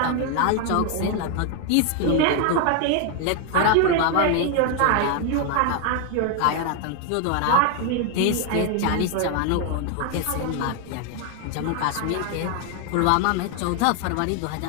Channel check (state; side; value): different; both; correlation 0.01